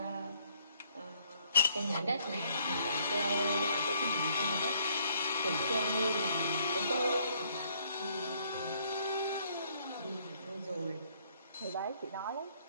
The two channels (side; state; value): both; inverted; correlation -0.65